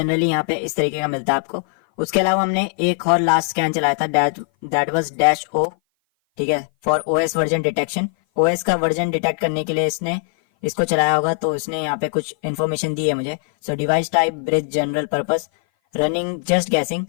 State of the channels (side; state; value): right; silent; 57 dB below the other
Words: यहाँ पे इस तरीके का मिलता है आपको। उसके अलावा हमने एक और लास्ट स्कैन चलाया था, दैट वाज -O, ठीक है, for OS version detection. OS का वर्जन डिटेक्ट करने के लिए इसने इसको चलाया होगा, तो इसने यहाँ पे कुछ इन्फॉर्मेशन दी है मुझे। So device type bridge general purpose running just guessing,